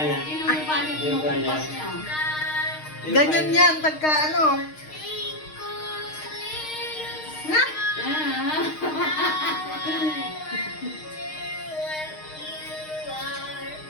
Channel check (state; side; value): late; right; 6.5 ms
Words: Yung pa niya. Ganyan yan, pagka ano. Ha?